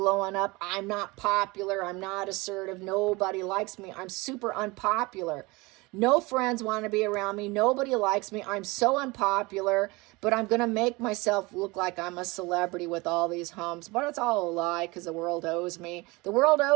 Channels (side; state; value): left; quieter; 24.0 dB